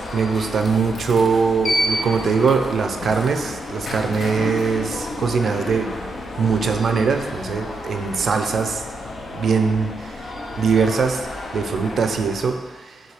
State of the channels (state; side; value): quieter; left; 4.1 dB